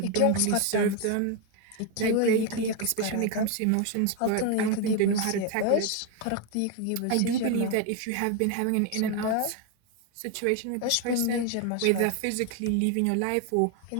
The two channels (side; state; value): both; different; correlation 0.01